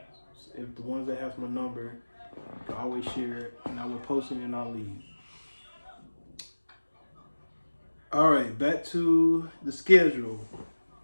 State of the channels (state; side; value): inverted; both; correlation -1.00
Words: if the ones that have my number, you can always share it, and I will post it in our league. All right, back to the schedule.